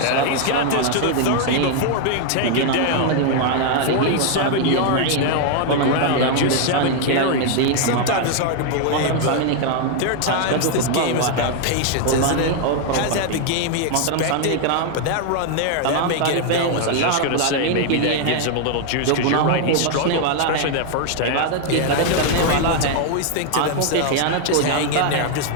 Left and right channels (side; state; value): both; different; correlation 0.00